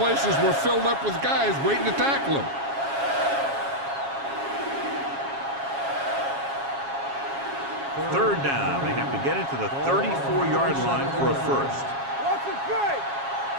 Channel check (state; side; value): late; left; 7.3 ms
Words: were filled up with guys waiting to tackle him. Third down. They have to get it to the 34-yard line for a first. Watch it play.